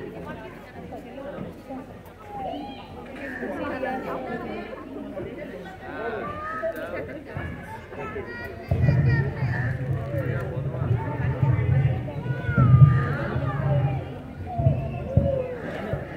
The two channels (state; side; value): identical; both; correlation 1.00